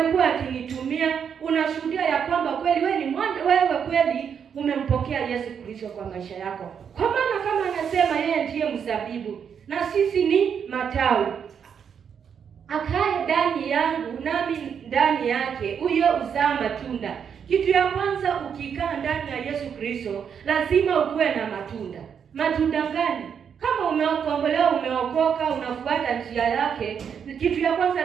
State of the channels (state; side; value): quieter; left; 7.4 dB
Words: akinitumia. Unashuhudia ya kwamba kweli wewe kweli umempokea Yesu Kristo kwa maisha yako. Kwa maana kama anasema yeye ndiye mzabibu na sisi ni matawi, akae ndani yangu nami ndani yake, huyo uzaa matunda. Kitu ya kwanza, ukikaa ndani ya Yesu Kristo, lazima ukuwe na matunda. Matunda gani? Kama umeokolewa, umeokoka, unafuata njia yake, kitu ya kwanza